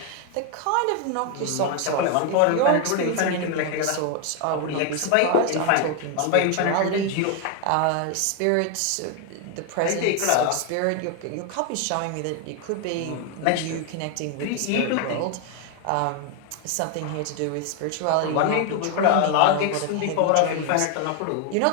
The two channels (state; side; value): different; both; correlation 0.01